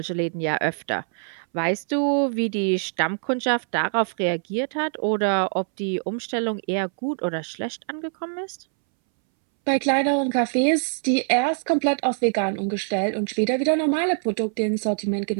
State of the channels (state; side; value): silent; left; 63 dB below the other